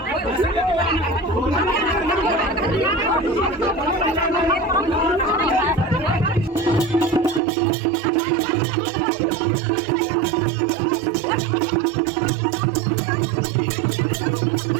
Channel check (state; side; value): drops out; left; at 7.4 s